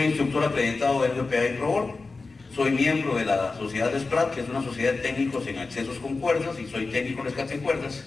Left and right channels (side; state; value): right; quieter; 3.9 dB